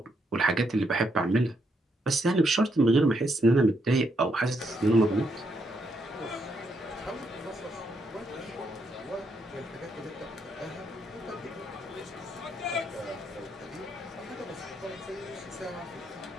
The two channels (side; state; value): both; normal; correlation 0.77